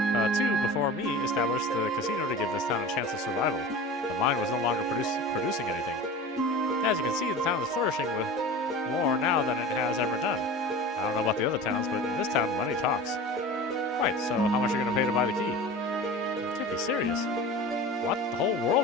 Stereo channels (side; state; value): both; normal; correlation 0.34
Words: too, before me, established the casino to give this town a chance of survival. The mine was no longer producing anything. As you can see, the town is flourishing with more now than it has ever done. I don't know about the other towns, but in this town, money talks. Right, so how much are you going to pay to buy the key? You can't be serious. What? The whole